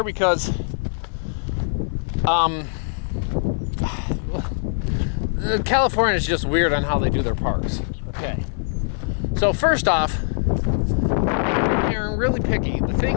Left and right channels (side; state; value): right; silent; 57 dB below the other